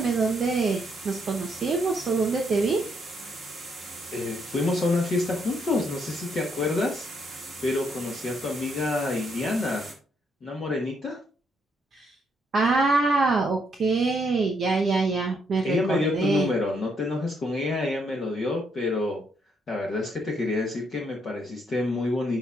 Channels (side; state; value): both; normal; correlation 0.74